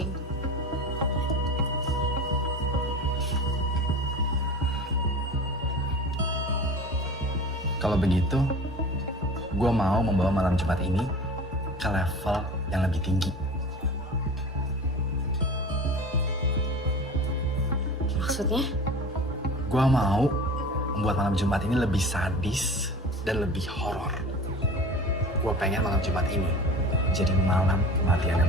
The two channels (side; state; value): both; normal; correlation 0.36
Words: Kalau begitu, gue mau membawa malam Jumat ini ke level yang lebih tinggi. Maksudnya? Gue mau membuat malam Jumat ini lebih sadis dan lebih horor. Gue pengen malam Jumat ini jadi malam kematiannya